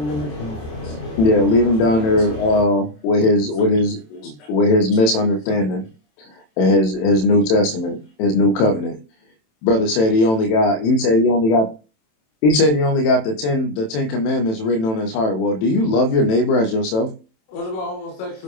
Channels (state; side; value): late; right; 27 ms